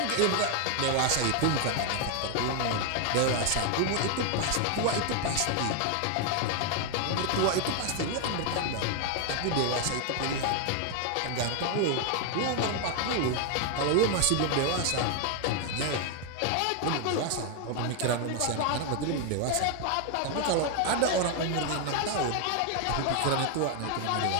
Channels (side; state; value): both; different; correlation 0.00